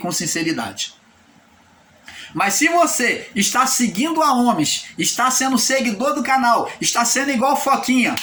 sinceridade. Mas se você está seguindo a homens, está sendo seguidor do canal, está sendo igual Foquinha,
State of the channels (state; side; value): identical; both; correlation 1.00